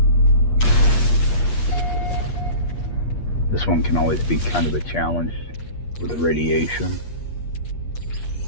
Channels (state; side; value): late; right; 8.5 ms